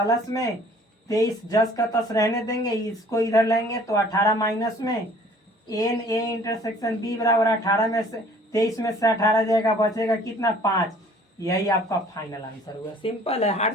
में 23 जस का तस रहने देंगे, इसको इधर लाएंगे तो 18 माइनस में एन ए इंटरसेक्शन बी बराबर 18 में से 23 में से 18 जाएगा, बचेगा कितना? 5। यही आपका फाइनल आंसर हुआ। सिंपल है,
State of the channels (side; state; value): both; normal; correlation 0.53